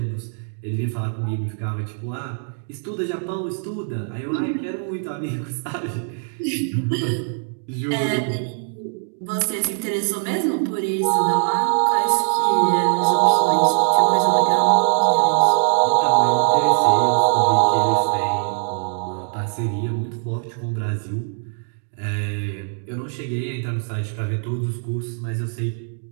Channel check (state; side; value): silent; left; 65 dB below the other